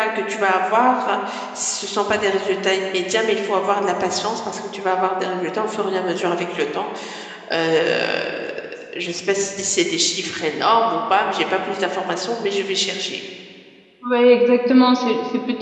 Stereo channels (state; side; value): identical; both; correlation 1.00